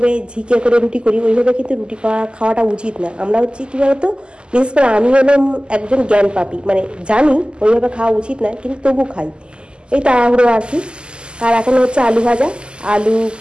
ঝিকে করে রুটি করি, ওইভাবে কিন্তু রুটি খাওয়াটা উচিত না। আমরা হচ্ছে কী বলতো, বিশেষ করে আমি হলাম একজন জ্ঞান পাপী, মানে জানি ওইভাবে খাওয়া উচিত না, কিন্তু তবু খাই, এই তাড়াহুড়ো আর কি। আর এখন হচ্ছে আলু ভাজা,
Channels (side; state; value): left; late; 0.049 ms